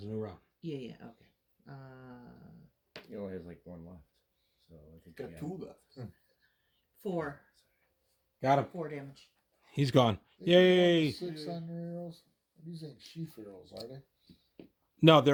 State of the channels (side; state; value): both; identical; correlation 1.00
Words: a new round. Yeah, okay. He only has like 1 left. So I think Got we 2 left. 4. Got him. 4 damage. He's gone. Yay! 6 on your arrows. These ain't sheath arrows, are they? No,